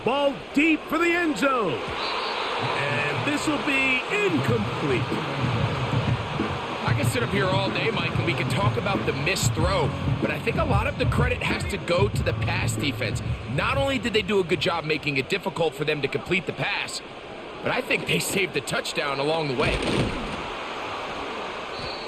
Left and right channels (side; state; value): both; identical; correlation 1.00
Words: deep for the end zone. And this will be incomplete. I can sit up here all day, Mike, and we can talk about the missed throw, but I think a lot of the credit has to go to the pass defense. Not only did they do a good job making it difficult for them to complete the pass, but I think they saved the touchdown along the way.